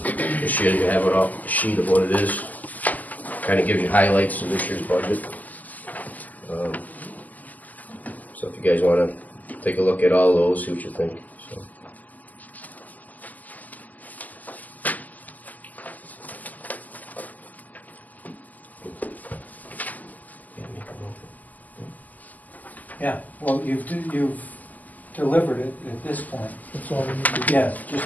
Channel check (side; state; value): right; late; 0.081 ms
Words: This year you have a sheet of what it is. Kind of gives you highlights of this year's budget. So if you guys want to take a look at all those, see what you think. So. Yeah, well, you've delivered it at this point. That's all we need to do. Yeah,